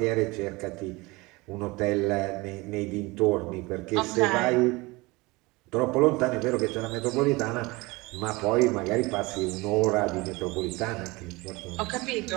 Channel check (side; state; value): left; quieter; 23.5 dB